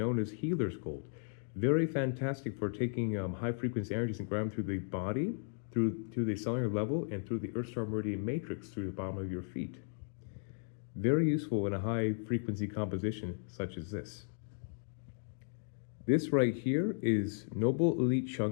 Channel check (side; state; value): right; silent; digital silence